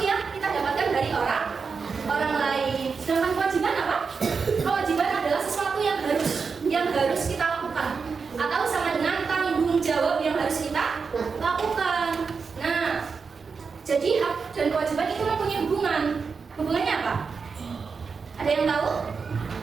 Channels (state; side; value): quieter; left; 5.2 dB